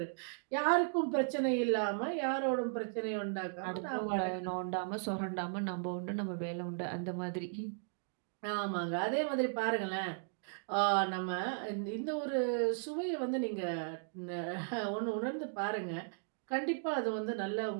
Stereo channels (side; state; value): left; silent; digital silence